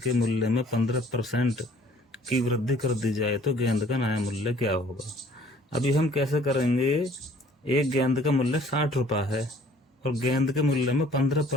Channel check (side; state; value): both; normal; correlation 0.55